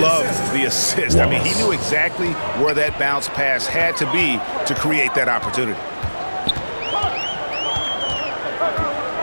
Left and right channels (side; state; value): both; inverted; correlation -1.00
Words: the assist. I mean, he knew exactly where that bounce pass had to be to create that opportunity.